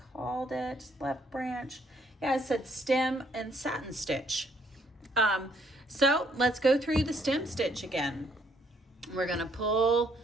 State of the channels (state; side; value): normal; both; correlation 0.68